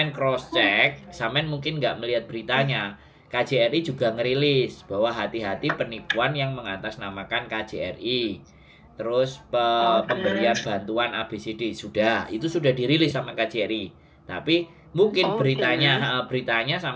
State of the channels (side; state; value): both; identical; correlation 1.00